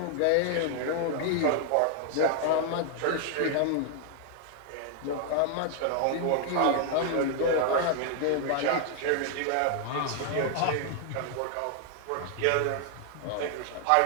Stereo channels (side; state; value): both; different; correlation 0.00